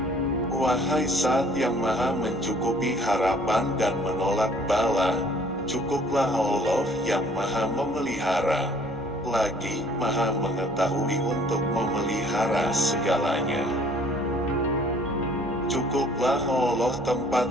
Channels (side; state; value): both; normal; correlation 0.56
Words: Wahai Zat yang Maha mencukupi harapan dan menolak bala, cukuplah Allah yang Maha memelihara, lagi Maha mengetahui untuk memelihara segalanya. Cukuplah Allah